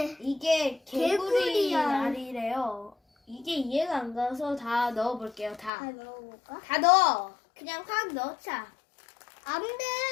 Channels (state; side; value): drops out; right; at 5.7 s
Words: 이게 개구리알이래요. 이게 이해가 안 가서 다 넣어볼게요. 다 넣어볼까? 다 넣어. 그냥 확 넣자. 안